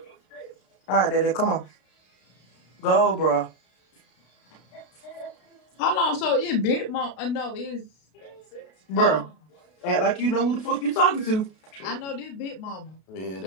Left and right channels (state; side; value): late; right; 32 ms